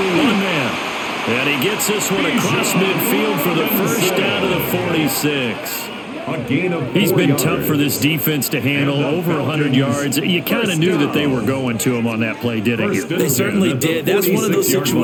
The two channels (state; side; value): identical; both; correlation 1.00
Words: man. And he gets this one across midfield for the 1st down to the 46. He's been tough for this defense to handle, over 100 yards. You kind of knew that they were going to him on that play, didn't you? They certainly did. That's one of those